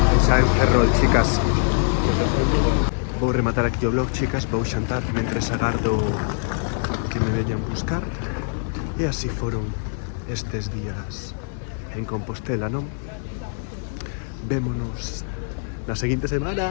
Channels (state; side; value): silent; right; 63 dB below the other